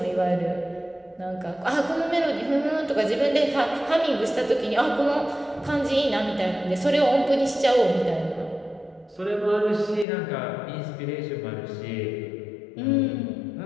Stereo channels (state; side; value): drops out; right; at 10.1 s